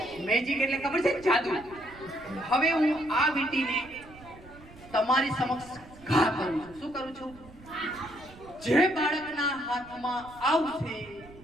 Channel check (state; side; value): noise; right; rumble, 21 dB below the sound